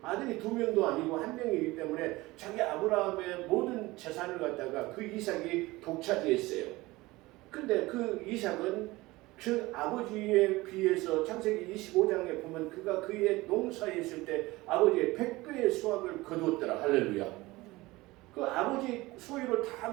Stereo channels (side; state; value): left; quieter; 20.3 dB